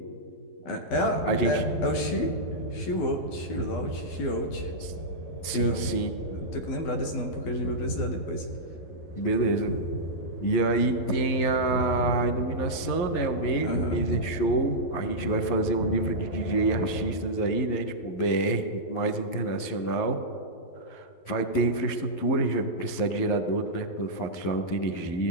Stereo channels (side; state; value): right; late; 11 ms